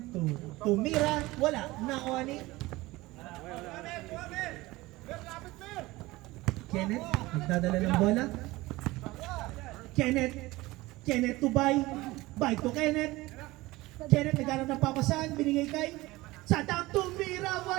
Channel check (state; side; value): quieter; left; 19.8 dB